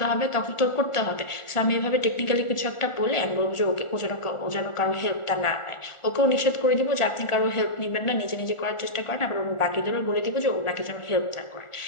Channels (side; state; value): right; late; 1.4 ms